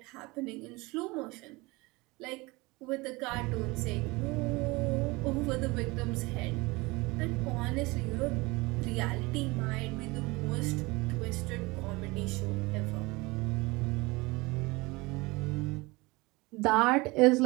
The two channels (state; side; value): quieter; left; 23.6 dB